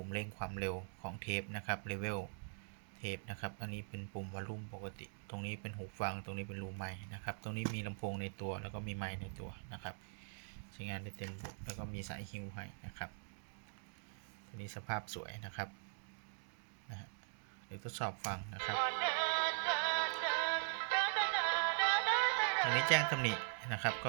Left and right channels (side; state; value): left; silent; digital silence